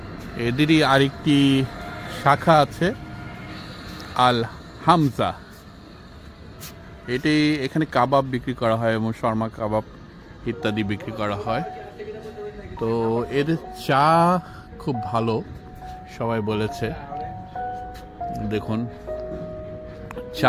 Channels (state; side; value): identical; both; correlation 1.00